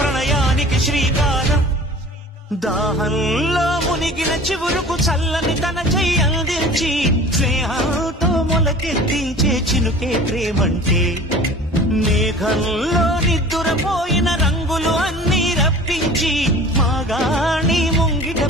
శ్రీకారం దాహంలో మునిగిన చివురుకు చల్లని తన చెయ్యి అందించి స్నేహంతో మొలకెత్తించే చినుకే ప్రేమంటే మేఘంలో నిద్దురపోయిన రంగులు అన్నీ రప్పించి మాగాణి ముంగిట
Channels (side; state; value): both; normal; correlation 0.43